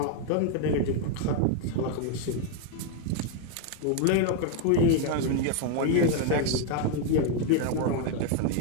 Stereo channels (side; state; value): both; different; correlation 0.00